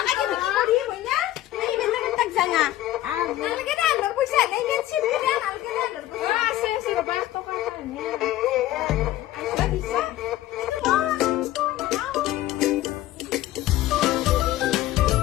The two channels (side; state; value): right; quieter; 14.8 dB